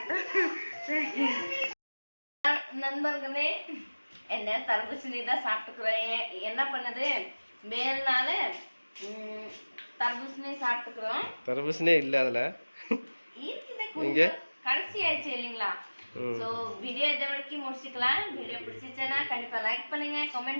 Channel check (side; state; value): both; inverted; correlation -1.00